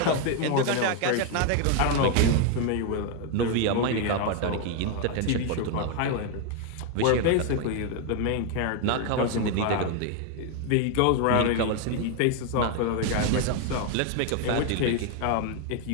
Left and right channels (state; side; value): different; both; correlation 0.01